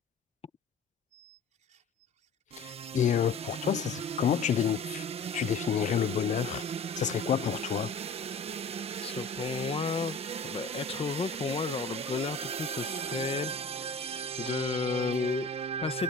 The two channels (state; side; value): quieter; right; 3.6 dB